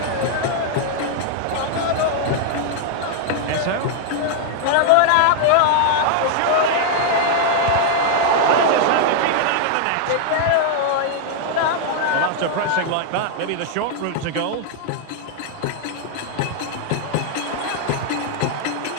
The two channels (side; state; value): both; different; correlation -0.01